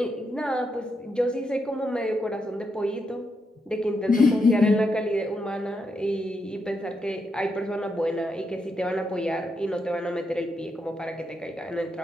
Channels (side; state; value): both; normal; correlation 0.82